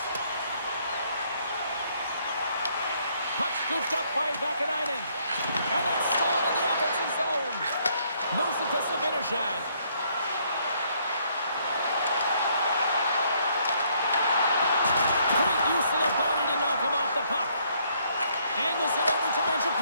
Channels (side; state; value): both; inverted; correlation -0.68